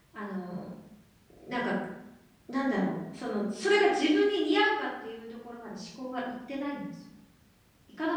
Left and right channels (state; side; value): identical; both; correlation 1.00